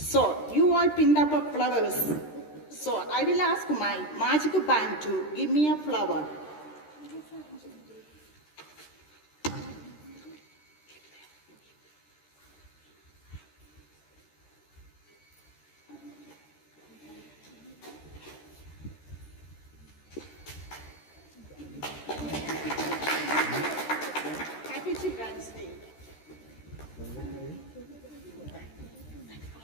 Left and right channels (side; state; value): right; late; 13 ms